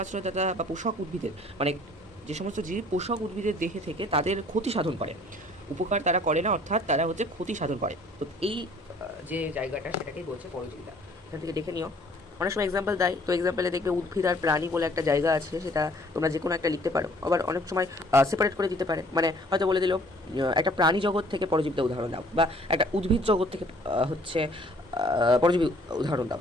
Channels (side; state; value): both; normal; correlation 0.57